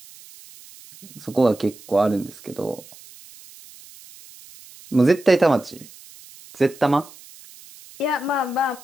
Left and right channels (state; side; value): noise; right; hiss, 21 dB below the sound